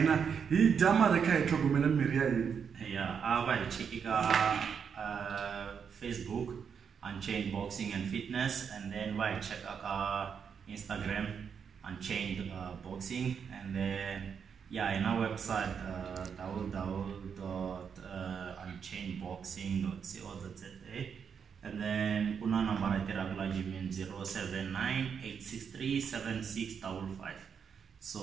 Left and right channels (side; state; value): left; quieter; 6.9 dB